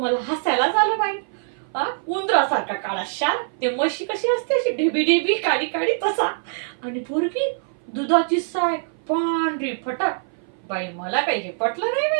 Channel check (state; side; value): silent; left; 57 dB below the other